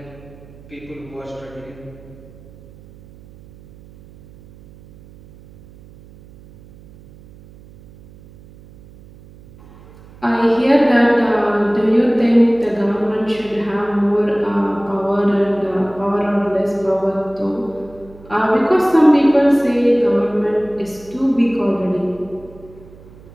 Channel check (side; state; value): right; noise; hum, 22 dB below the sound